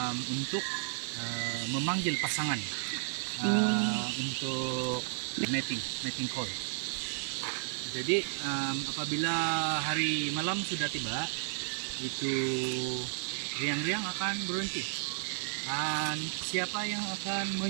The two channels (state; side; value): silent; left; 56 dB below the other